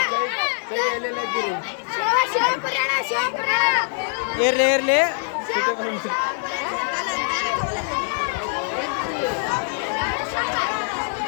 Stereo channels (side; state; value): right; silent; 63 dB below the other